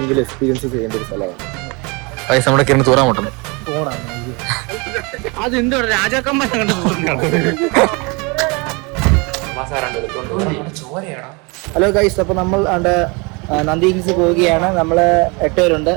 എക്സ്പീരിയൻസ് ചെയ്യേണ്ട ഒരു സ്ഥലമാണ് പൈസ നമ്മുടെ കിരണ തൂറാൻ മുട്ടുന്നു. അതെന്തോ രാജാക്കന്മാരെ കണ്ട് ഹലോ ഗൈസ്, അപ്പൊ നമ്മൾ നന്ദി ഹിൽസ് പോവുകയാണ്. നമ്മള് 8 പേരുണ്ട്.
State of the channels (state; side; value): quieter; left; 29.2 dB